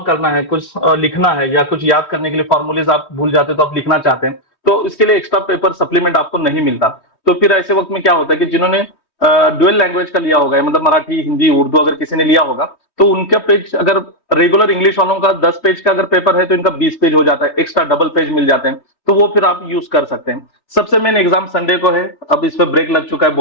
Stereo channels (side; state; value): right; late; 3.2 ms